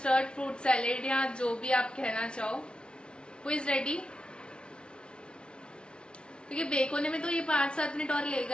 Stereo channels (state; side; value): late; right; 0.056 ms